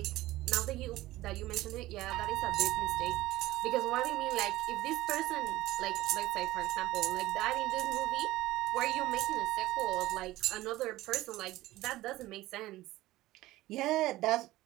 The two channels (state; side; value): quieter; left; 17.0 dB